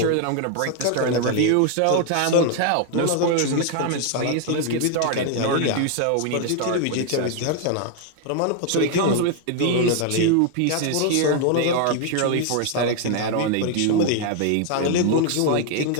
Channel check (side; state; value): both; different; correlation 0.00